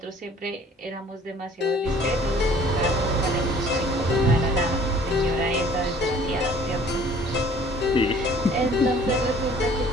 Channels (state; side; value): normal; both; correlation 0.53